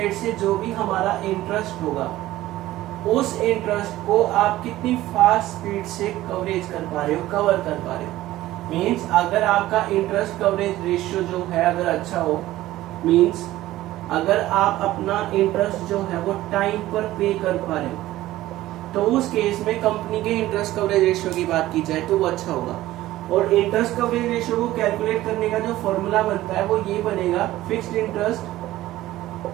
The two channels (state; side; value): quieter; left; 15.7 dB